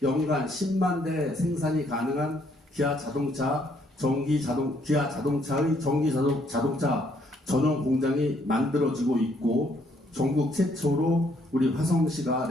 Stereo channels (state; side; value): normal; both; correlation 0.69